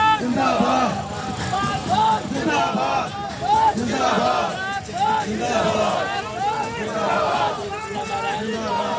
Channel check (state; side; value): identical; both; correlation 1.00